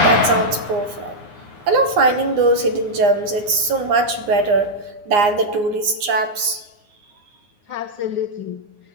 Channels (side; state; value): left; late; 9.7 ms